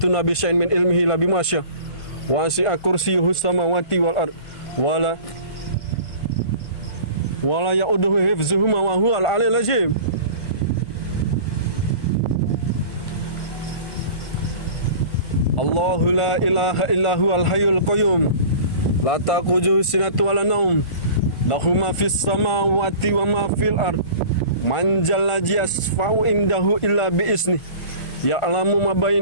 bi syai'in min ilmihi illa bima syaa. Wasi'a kursiyyuhu samawati wal ard. Wala ya'uduhu hifzuhuma wa huwal aliyyul azim. Allahu la ilaha illa huwal hayyul qayyum. La taqujuhu sinatun wala naum. Lahu ma fis samawati wa ma fil ard. Man jalla yasfa'u indahu illa bi isni. Ya'lamu ma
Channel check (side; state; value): right; late; 1.4 ms